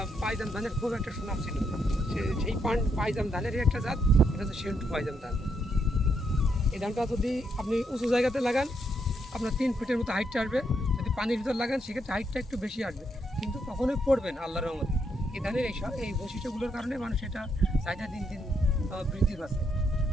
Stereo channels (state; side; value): normal; both; correlation 0.77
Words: পাইজাম ধানের খুব একটা সুনাম ছিল। সেই পাইজাম ধানেরই একটা জাত, এটা হচ্ছে সেন্টু পাইজাম ধান। এই ধানটা যদি আপনি উঁচু জায়গাতে লাগান, আপনার 3 ফিটের মতো হাইটটা আসবে। যদি পানির ভিতর লাগান সেক্ষেত্রে হাইটটা একটু বেশি আসবে, কিন্তু কখনোই পড়বেন আল্লাহর রহমতে। এই ধানের এই বৈশিষ্ট্যগুলোর কারণে মানুষ এটা চাহিদা দিন দিন বৃদ্ধি পাচ্ছে।